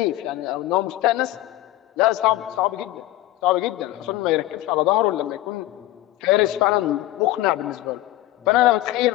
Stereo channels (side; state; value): right; quieter; 16.2 dB